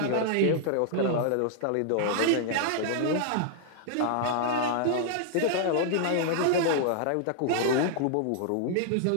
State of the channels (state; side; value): different; both; correlation -0.01